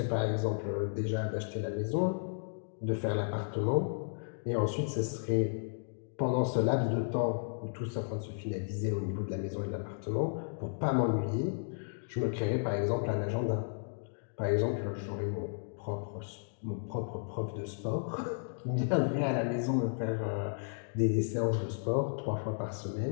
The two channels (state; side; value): silent; right; digital silence